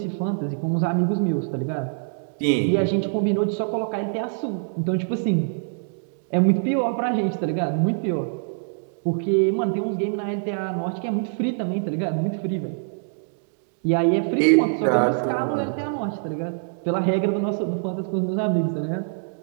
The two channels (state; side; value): silent; left; digital silence